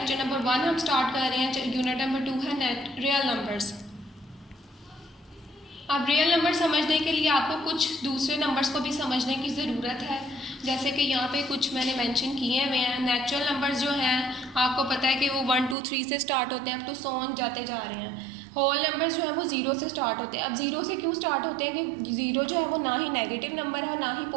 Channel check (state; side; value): drops out; left; at 15.8 s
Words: नंबर 1 हम स्टार्ट कर रहे हैं। यूनिट नंबर 2 है नेट रियल नंबर्स। अब रियल नंबर समझने के लिए आपको कुछ दूसरे नंबर्स को भी समझने की ज़रूरत है। जैसे कि यहाँ पे कुछ मैंने मेंशन किए हुए हैं। नेचुरल नंबर्स जो हैं आपको पता है कि वो 1 2 3 से स्टार्ट होते हैं, अब तो 100 जाते जा रहे हैं। होल नंबर्स जो है वो 0 से स्टार्ट होते हैं। अब 0 से क्यों स्टार्ट होते हैं कि 0 जो है वो ना ही नेगेटिव नंबर है ना ही